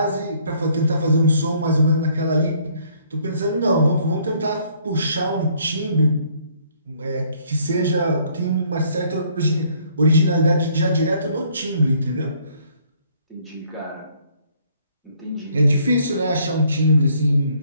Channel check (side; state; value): both; inverted; correlation -0.64